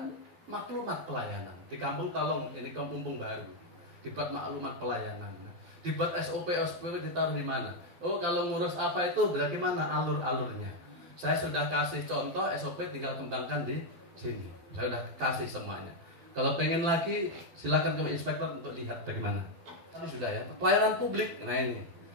maklumat pelayanan. Di kampung tolong, ini kampung baru, dibuat maklumat pelayanan. Dibuat SOP ditaruh di mana? Oh kalau ngurus apa itu berarti mana alur-alurnya. Saya sudah kasih contoh SOP, tinggal kembangkan di sini. Saya sudah kasih semuanya. Kalau pengen lagi silakan ke inspektor untuk lihat bagaimana. Tapi sudah ya. Pelayanan publik, nah ini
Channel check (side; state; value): left; late; 12 ms